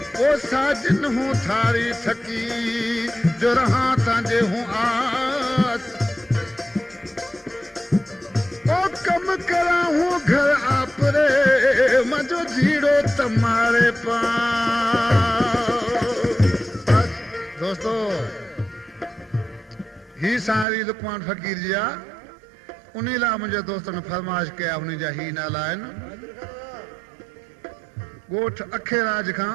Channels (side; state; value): left; drops out; at 20.7 s